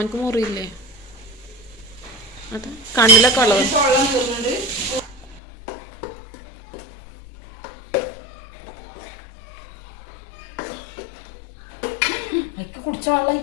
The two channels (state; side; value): drops out; right; at 5.4 s